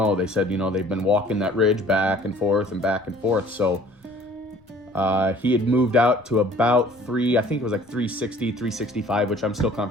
They said, they've been walking that ridge back and forth and back and forth. So he had moved out to about I think it was like 360, 365, which I'm still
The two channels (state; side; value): normal; both; correlation 0.52